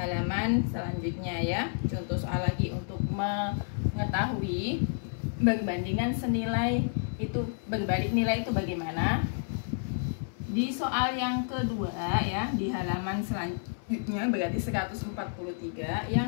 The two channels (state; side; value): silent; right; 58 dB below the other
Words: selanjutnya ya. Contoh soal lagi untuk mengetahui perbandingan senilai itu, berbalik nilai itu bagaimana. Di soal yang kedua ya, di halaman selanjutnya berarti 143,